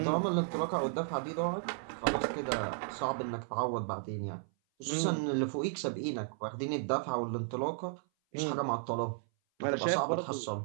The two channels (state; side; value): silent; left; 55 dB below the other